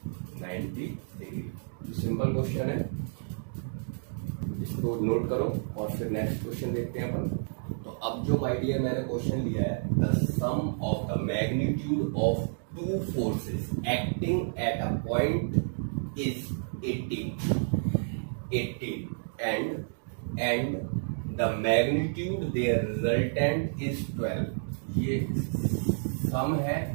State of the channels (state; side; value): silent; left; digital silence